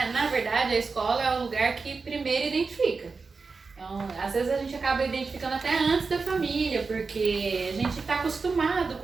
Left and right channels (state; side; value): quieter; left; 4.5 dB